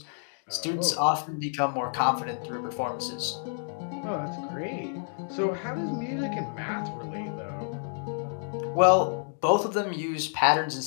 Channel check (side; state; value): right; silent; digital silence